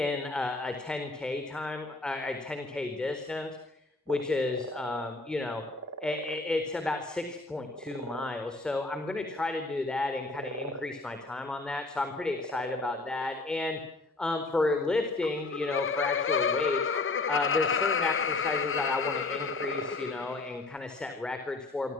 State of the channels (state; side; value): quieter; right; 3.2 dB